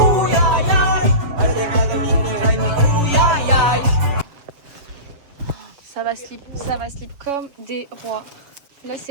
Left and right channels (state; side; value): late; left; 7.3 ms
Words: ay, ay. Uy, ay, ay. Ça va slip comme des rois. Là